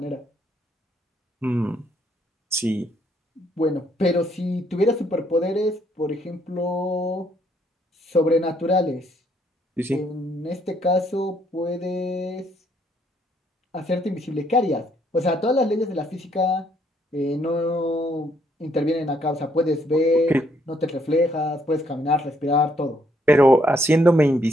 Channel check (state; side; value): normal; both; correlation 0.70